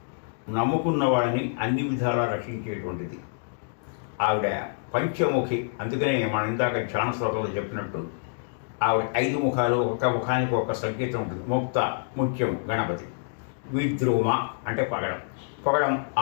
నమ్ముకున్న వాళ్ళని అన్ని విధాలా రక్షించేటువంటిది ఆవిడ. పంచముఖి, అందుకనే మనం ఇందాక ధ్యాన శ్లోకంలో చెప్పినట్టు ఆవిడ 5 ముఖాలు, ఒక ముఖానికి ఒక సంకేతం ఉంటుంది. ముక్త ముత్యము గణపతి, విద్రుమ అంటే పగడం, పగడం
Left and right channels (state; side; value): silent; right; digital silence